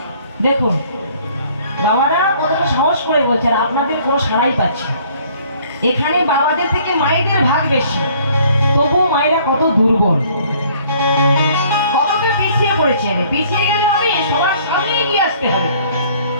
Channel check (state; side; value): inverted; both; correlation -0.58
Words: দেখুন বাবারা কতটা সাহস করে বলছে, আর আপনাদের কোনো সাড়াই পাচ্ছে। এখানে বাবাদের থেকে মায়েদের ভাগ বেশি, তবুও মায়েরা কত দুর্বল, কতটা পিছিয়ে পড়েছে। পিছিয়ে গেলে হবে, সবার সামনে এগিয়ে আসতে হবে,